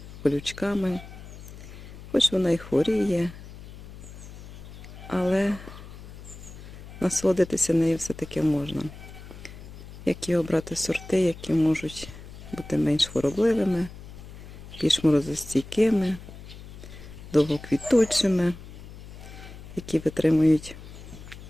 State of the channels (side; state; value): left; noise; hum, 15 dB below the sound